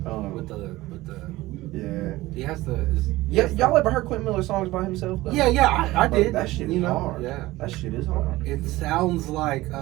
with the Yeah. he has the Yeah, y'all ever heard Quentin Miller songs by himself? Though? yeah I Bro, did that shit you is know hard. yeah That shit is hard. it sounds like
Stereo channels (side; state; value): left; quieter; 18.3 dB